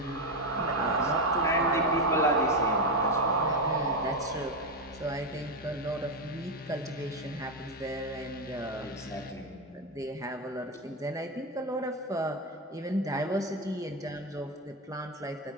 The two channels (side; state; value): both; normal; correlation 0.10